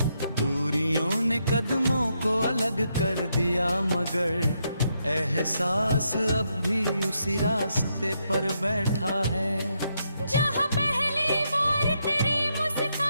दूरियों ने कदमों को अलग कर दिया मगर एहसास अब भी उसी रास्ते पर बैठा है। जहाँ पहली बार तेरी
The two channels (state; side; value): inverted; both; correlation -0.79